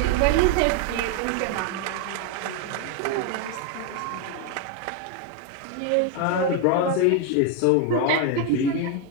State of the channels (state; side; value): different; both; correlation 0.01